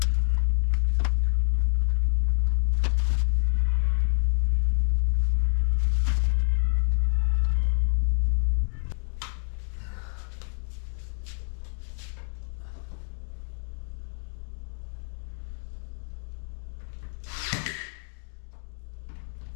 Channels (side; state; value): right; silent; 60 dB below the other